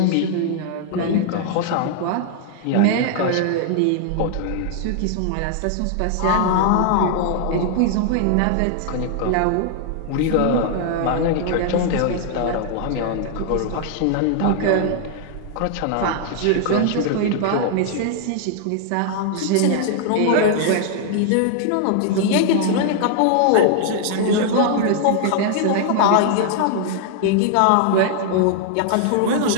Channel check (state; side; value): different; both; correlation 0.00